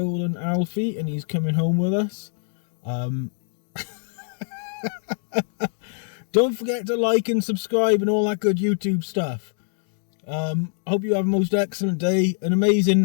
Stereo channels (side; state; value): right; silent; 63 dB below the other